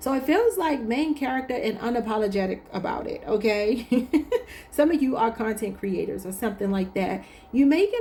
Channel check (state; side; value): identical; both; correlation 1.00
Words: it feels like main character and unapologetic about it, okay? Some of you are content creators or something like that. You may